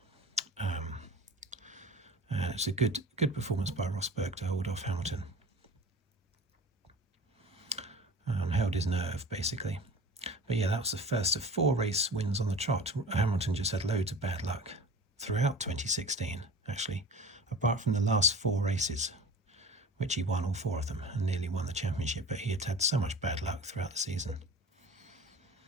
It's a good performance by Rosberg to hold off Hamilton. Held his nerve, basically. But yeah, that was the first of 4 race wins on the trot. Hamilton just had loads of bad luck throughout 2016, actually, apart from the last 4 races, which he won all 4 of them and nearly won the championship, but he had had so much bad luck throughout the season.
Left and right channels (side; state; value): both; normal; correlation 0.38